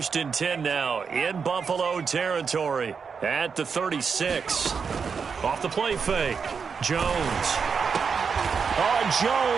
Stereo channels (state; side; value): quieter; left; 5.9 dB